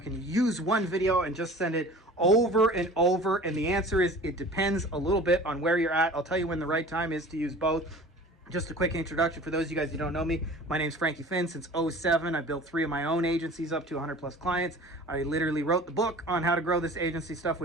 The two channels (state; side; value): normal; both; correlation 0.42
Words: you use one video and just send it over and over? And the answer is it depends a little bit on where you're at. I'll tell you when the right time is to use both. Just a quick introduction for those of you guys who don't know me. My name's Frankie Fihn. Since 2007, I built 3 of my own agencies up to 100 plus clients. I literally wrote the book on how to grow this agency stuff,